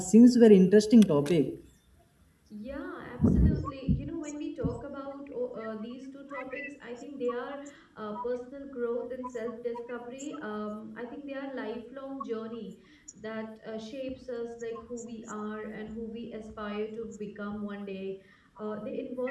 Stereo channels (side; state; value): both; identical; correlation 1.00